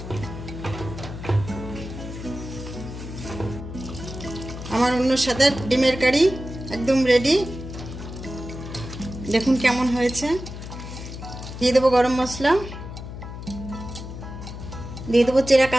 আমার অন্য স্বাদের ডিমের কারি একদম রেডি। দেখুন কেমন হয়েছে। দিয়ে দেবো গরম মশলা, দিয়ে দেবো চেরা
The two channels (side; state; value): left; noise; hum, 10 dB below the sound